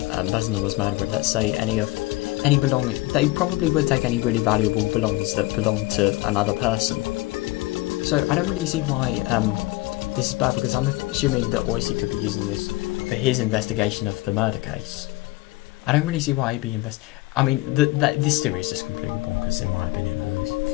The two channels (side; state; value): right; quieter; 19.6 dB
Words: person that was murdered. Let's say any belonging. They probably would take any really valuable belongings that belong to another person. So I don't really see why this is bad, because I'm assuming that Oishi could be using this for his investigation of the murder case. I don't really see why he'd be I mean, this theory is just completely bonkers in my opinion, at least.